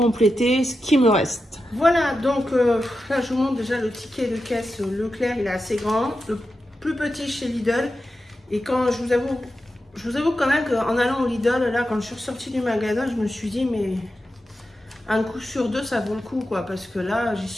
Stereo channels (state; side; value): normal; both; correlation 0.90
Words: ce qui me reste. Voilà, donc là je vous montre déjà le ticket de caisse Leclerc, il est assez grand, le plus petit chez Lidl. Et quand je vous avoue quand même qu'en allant au Lidl, là quand je suis ressortie du magasin, je me suis dit mais un coup sur 2 ça vaut le coup quoi, parce que là j'y